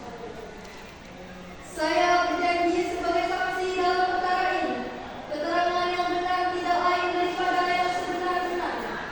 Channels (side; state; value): both; identical; correlation 1.00